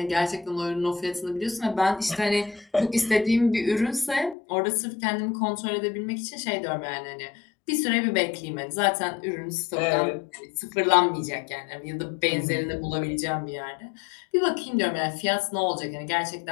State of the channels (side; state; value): right; drops out; at 4.4 s